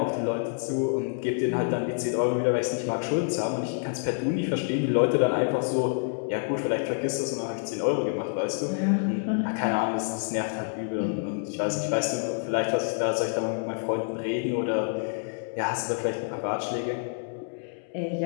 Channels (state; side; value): silent; right; digital silence